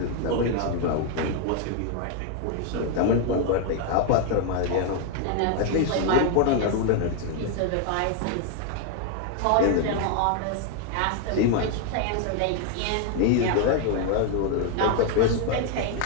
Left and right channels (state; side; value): different; both; correlation 0.00